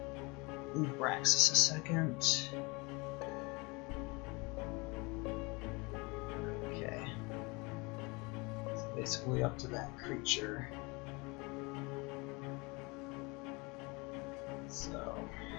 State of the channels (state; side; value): quieter; right; 27.1 dB